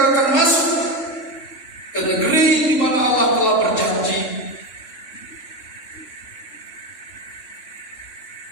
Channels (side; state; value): right; late; 4.0 ms